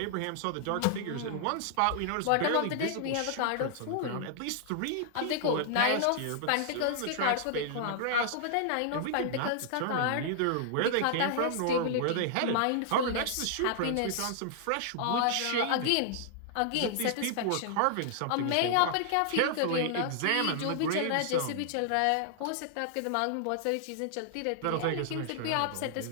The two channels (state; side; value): different; both; correlation -0.01